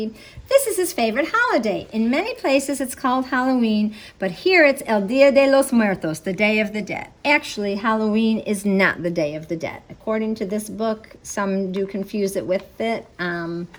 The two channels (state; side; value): identical; both; correlation 1.00